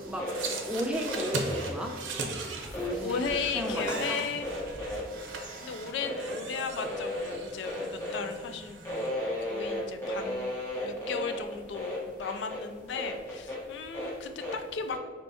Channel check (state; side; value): normal; both; correlation 0.31